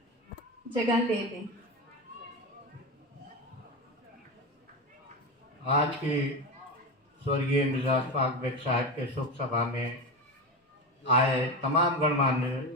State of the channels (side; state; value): both; normal; correlation 0.20